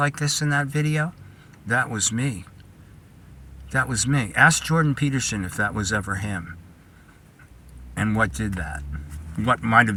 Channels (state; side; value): identical; both; correlation 1.00